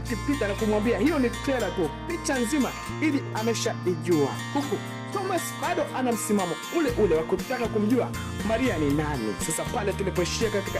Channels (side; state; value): both; identical; correlation 1.00